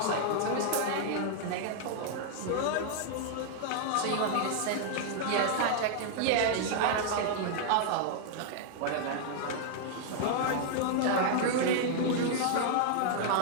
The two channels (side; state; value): both; different; correlation -0.01